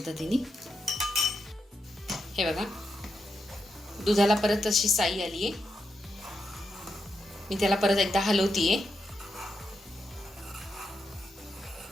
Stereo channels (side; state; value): both; normal; correlation 0.85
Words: हे बघा, दुधाला परत अशी साई आली आहे। मी त्याला परत एकदा हलवतीये।